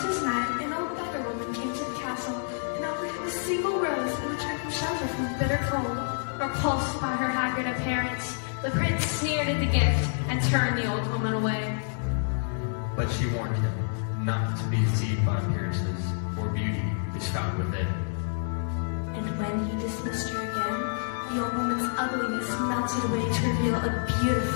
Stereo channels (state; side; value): silent; right; digital silence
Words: night, an old beggar woman came to the castle and offered him a single rose in return for shelter from the bitter cold. Repulsed by her haggard appearance, the prince sneered at the gift and turned the old woman away. But she warned him not to be deceived by appearances, for beauty is found within. And when he dismissed her again, the old woman's ugliness melted away to reveal a